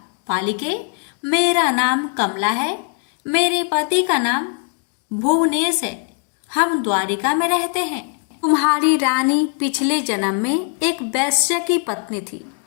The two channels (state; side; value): quieter; right; 39.4 dB